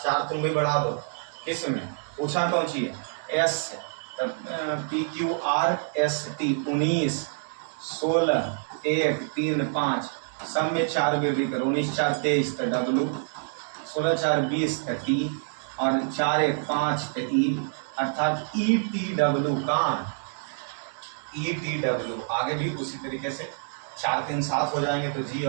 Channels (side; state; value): left; silent; digital silence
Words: तुम भी बढ़ा दो। किस में पूछा कौन सी है, एस PQRST 19 16 1 3 5 सब में 4 वृद्धि करो, 19 4 23 W, 16 4 20 T और 4 1 5 E, अर्थात ETW का ETW। आगे भी उसी तरीके से 4 3 7 हो जाएंगे तो जी